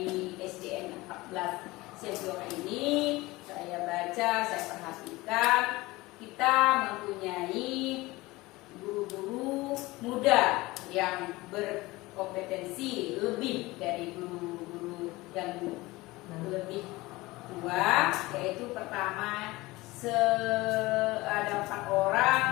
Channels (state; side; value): quieter; right; 20.6 dB